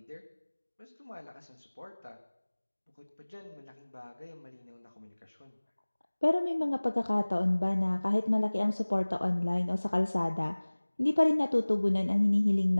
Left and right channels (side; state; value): both; inverted; correlation -1.00